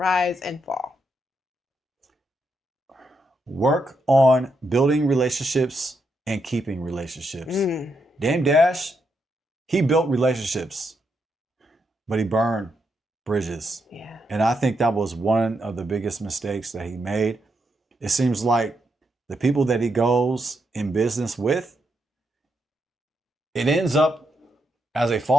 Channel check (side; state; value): both; normal; correlation 0.81